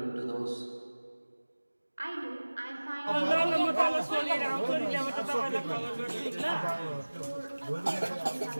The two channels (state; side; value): inverted; both; correlation -1.00